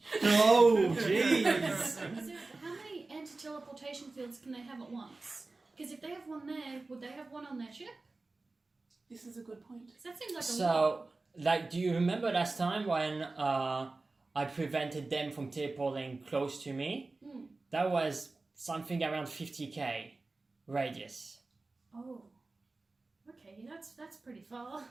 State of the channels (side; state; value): left; quieter; 3.4 dB